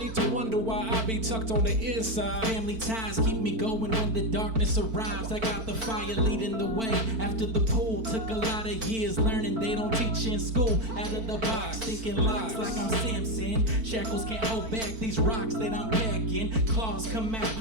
to wonder why I be tucked on the inside. Family ties keep me going when the darkness arrives. I got the fire leading the way. After the pool, took a lot of years learning they don't teach in school. Out of the box, thinking locks like I'm Samson. Shackles can't hold back these rocks that I'm packing. Claws come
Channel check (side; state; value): left; late; 4.5 ms